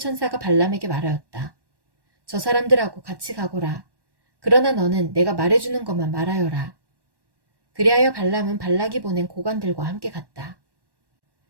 발람에게 말하였다. 저 사람들하고 같이 가거라. 그러나 너는 내가 말해주는 것만 말하여라. 그리하여 발람은 발락이 보낸 고관들과 함께 갔다.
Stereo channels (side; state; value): left; late; 1.1 ms